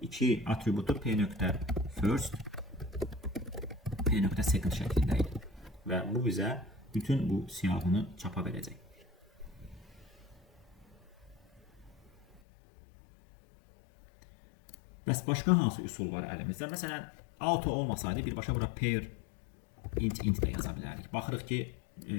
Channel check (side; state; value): right; drops out; at 12.4 s